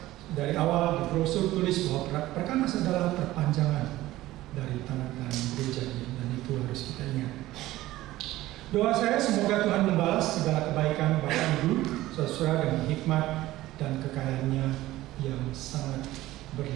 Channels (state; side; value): quieter; left; 16.4 dB